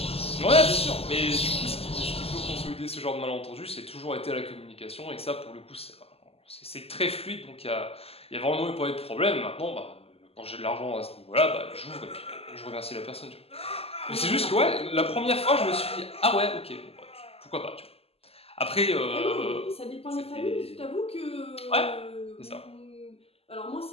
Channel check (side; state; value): right; late; 0.29 ms